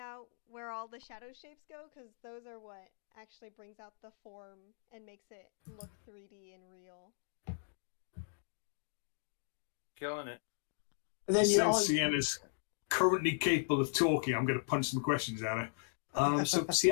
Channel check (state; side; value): silent; right; digital silence